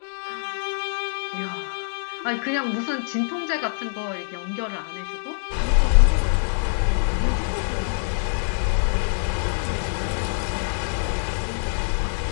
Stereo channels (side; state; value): right; silent; digital silence